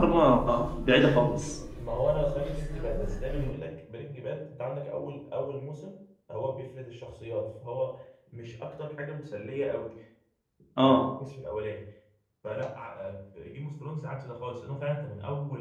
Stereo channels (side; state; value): both; identical; correlation 1.00